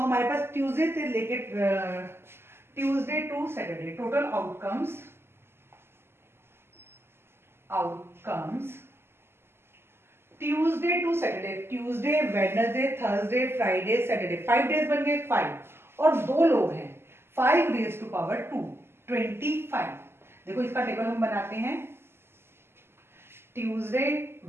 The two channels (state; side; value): late; left; 0.12 ms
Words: पास ट्यूसडे से लेकर Tuesday to Saturday total outcomes Tuesday to Saturday, Tuesday, Wednesday, Thursday, Friday, Saturday, 5 days बन गए 5. और दो लोग हैं, 5 रेज टू पावर 2, 25. देखो इसका टेबल हम बनाते हैं. Tuesday,